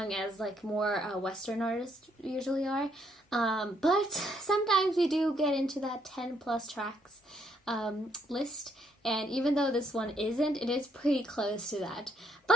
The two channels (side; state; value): both; normal; correlation 0.72